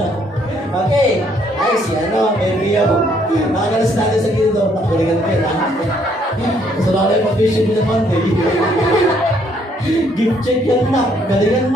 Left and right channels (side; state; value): both; normal; correlation 0.68